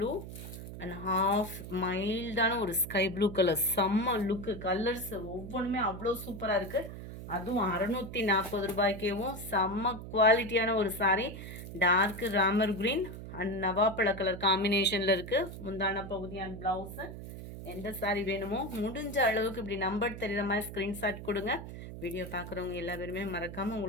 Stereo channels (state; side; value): noise; right; hum, 11 dB below the sound